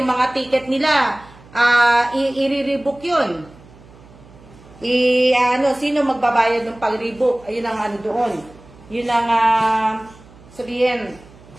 mga ticket nila, i-rebook yun. Sino magbabayad ng pag-rebook? Ayun ang doon. Yun ang, sabihin,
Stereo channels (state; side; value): noise; right; hum, 23 dB below the sound